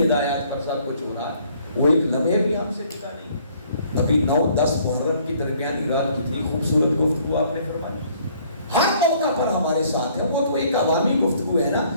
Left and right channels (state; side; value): inverted; both; correlation -0.61